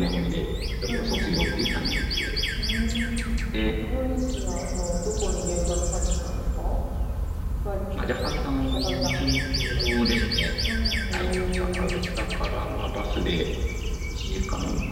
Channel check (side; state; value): both; identical; correlation 1.00